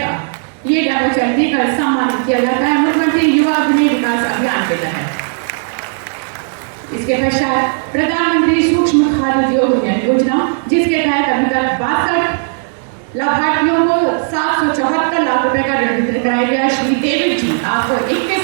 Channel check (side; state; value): left; silent; digital silence